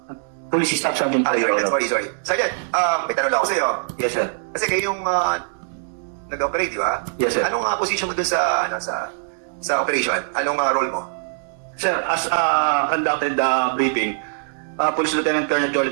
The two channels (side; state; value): left; silent; digital silence